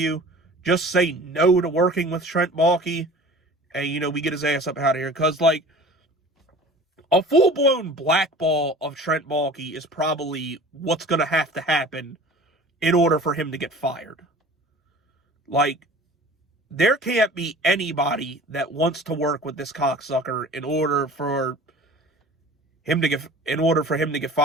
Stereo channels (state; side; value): normal; both; correlation 0.42